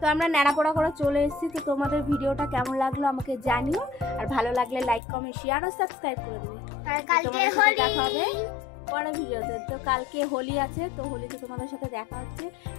আমরা ন্যাড়াপোড়া করে চলে এসেছি। তো তোমাদের ভিডিওটা কেমন লাগলো আমাকে জানিও, আর ভালো লাগলে লাইক কমেন্ট শেয়ার ও সাবস্ক্রাইব করে দেবে। তোমাদের সাথে দেখা হবে পরের ভিডিওতে। তো কালকে হোলি আছে, তো হোলিতে তোমাদের সাথে দেখা হচ্ছে।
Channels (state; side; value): drops out; right; at 5.0 s